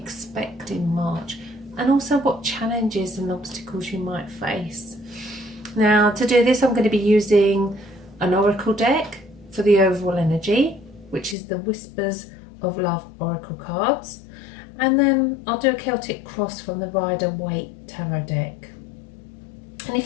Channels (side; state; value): right; drops out; at 11.4 s